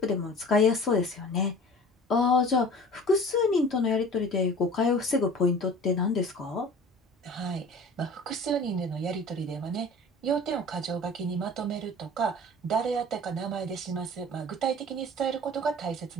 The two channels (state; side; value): normal; both; correlation 0.42